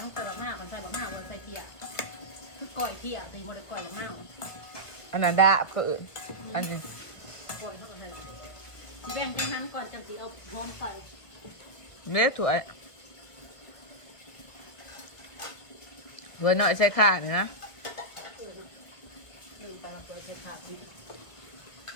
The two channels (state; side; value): late; right; 1.2 ms